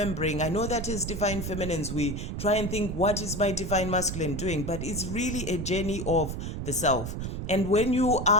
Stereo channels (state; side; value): noise; right; rumble, 5 dB below the sound